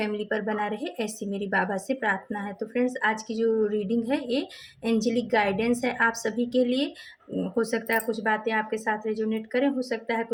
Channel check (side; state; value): both; identical; correlation 1.00